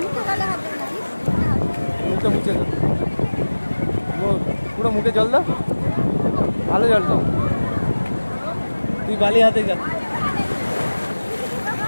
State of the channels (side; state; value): both; inverted; correlation -1.00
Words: মুখে মুছে দাও, পুরো মুখে জল দাও, ভালো জল দাও। তুই বালি হাতে যা।